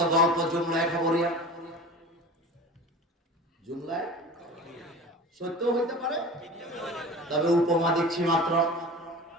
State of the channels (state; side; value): normal; both; correlation 0.36